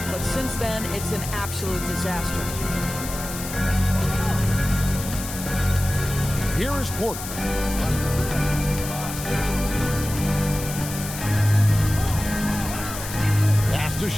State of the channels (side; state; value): left; noise; hiss, 9 dB below the sound